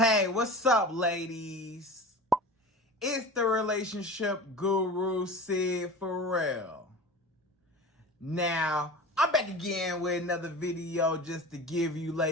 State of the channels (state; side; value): normal; both; correlation 0.34